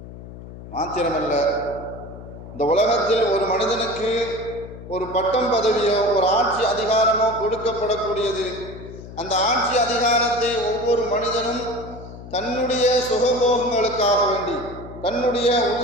மாத்திரமல்ல, இந்த உலகத்தில் ஒரு மனிதனுக்கு ஒரு பட்டம் பதவியோ ஒரு ஆட்சி அதிகாரமோ கொடுக்கப்படக்கூடியது. அந்த ஆட்சி அதிகாரத்தை ஒவ்வொரு மனிதனும் தன்னுடைய சுகபோகங்களுக்காக வேண்டி, தன்னுடைய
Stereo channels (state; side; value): noise; left; hum, 14 dB below the sound